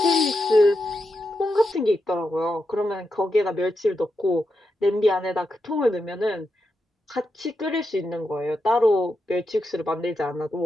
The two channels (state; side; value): normal; both; correlation 0.86